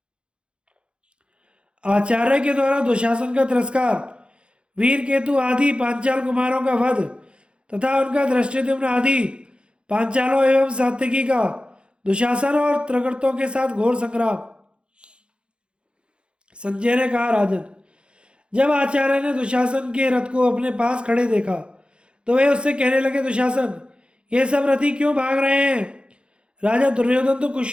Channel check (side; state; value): left; late; 0.055 ms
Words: आचार्य के द्वारा दुशासन का तिरस्कार, वीर केतु आदि पांचाल कुमारों का वध तथा उनका धृष्टद्युम्न आदि पांचालों एवं सात्यकी का दुशासन और त्रगर्तों के साथ घोर संग्राम। संजय ने कहा, राजन, जब आचार्य ने दुशासन के रथ को अपने पास खड़े देखा तो वे उससे कहने लगे, दुशासन, ये सब रथी क्यों भाग रहे हैं? राजा दुर्योधन तो